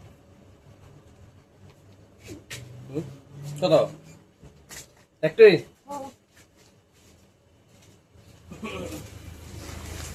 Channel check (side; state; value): both; identical; correlation 1.00